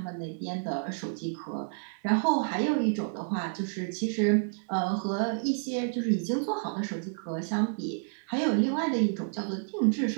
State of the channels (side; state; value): left; silent; 58 dB below the other